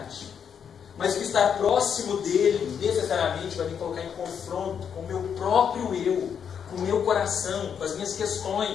mas que estar próximo dEle necessariamente vai me colocar em confronto com o meu próprio eu, com o meu coração, com as minhas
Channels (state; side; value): quieter; right; 7.6 dB